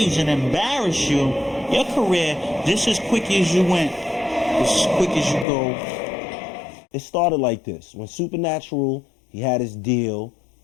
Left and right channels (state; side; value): drops out; right; at 5.5 s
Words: and embarrass you, your career, just as quick as you went, just as quick as you go. It started like this. When Supernatural, he had his deal,